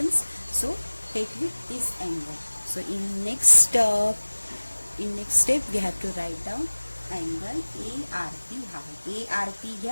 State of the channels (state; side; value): inverted; both; correlation -1.00